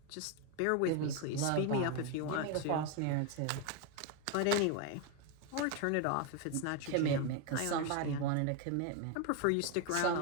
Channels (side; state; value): both; different; correlation 0.01